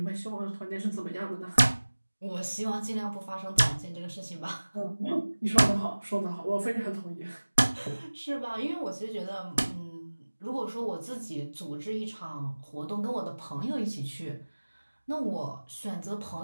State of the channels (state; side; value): inverted; both; correlation -1.00